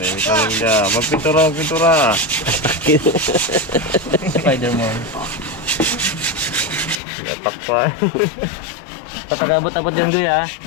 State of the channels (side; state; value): right; drops out; at 7.0 s